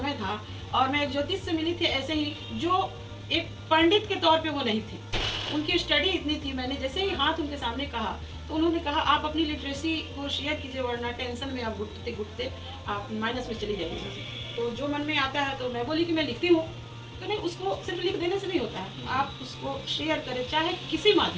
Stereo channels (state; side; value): identical; both; correlation 1.00